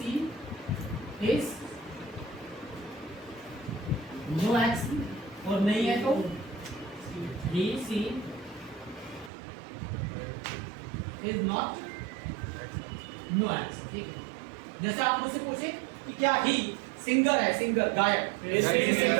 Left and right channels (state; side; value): drops out; left; at 9.3 s